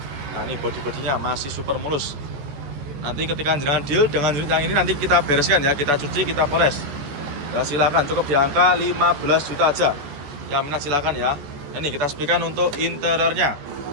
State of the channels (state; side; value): late; left; 14 ms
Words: Nah, ini bodi-bodinya masih super mulus. Nanti ketika jenengan deal dengan unit yang ini nanti kita bereskan ya. Kita cuci, kita poles. Ya, silakan cukup di angka 15 juta aja. Yang minat silakan ya. Ini kita sepikan untuk interiornya.